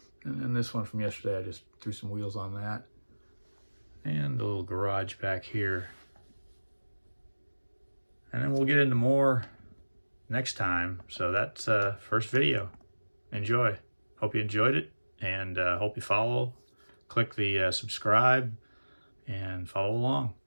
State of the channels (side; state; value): both; inverted; correlation -1.00